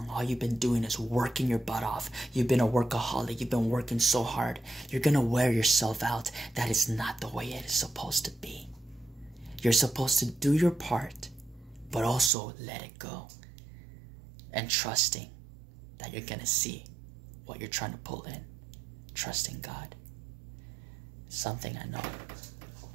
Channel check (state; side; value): drops out; left; at 12.3 s